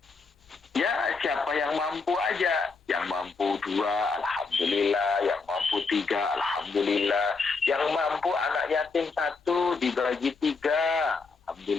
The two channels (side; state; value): right; quieter; 4.4 dB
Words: ya siapa yang mampu aja, yang mampu 2 alhamdulillah, yang mampu 3 alhamdulillah, yang mampu anak yatim 1 dibagi 3